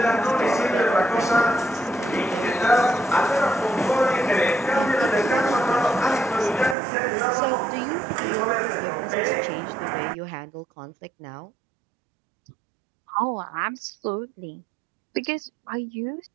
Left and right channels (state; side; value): drops out; left; at 6.8 s